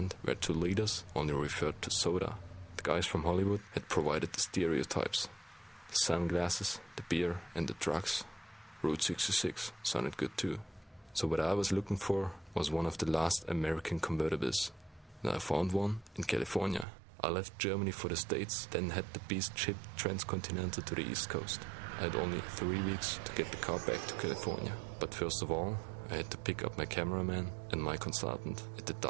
where 2 liters only referred to soda, the guys from Hollywood had provided the stereotypes. The sunglasses, the beer and the drugs. Route 66 sounded good too. So what I was looking for was one of the last American convertibles. And I found one in California. I left Germany for the States, then had the beast shipped transcontinental to the East Coast. I had only 3 weeks to get the car back to California. But first of all, I had to pick up my cameraman and my consultant at the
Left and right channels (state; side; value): drops out; left; at 16.9 s